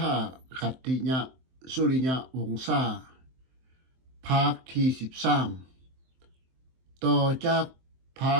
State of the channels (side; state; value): left; late; 23 ms